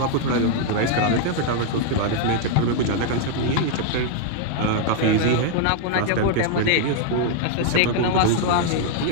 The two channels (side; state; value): both; different; correlation 0.00